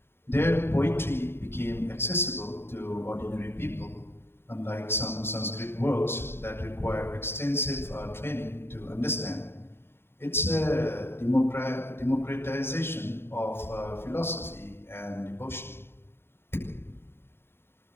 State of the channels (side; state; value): right; late; 0.11 ms